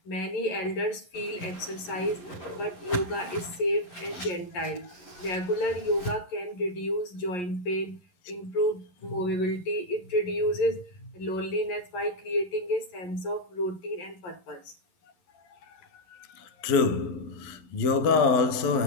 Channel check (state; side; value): late; right; 11 ms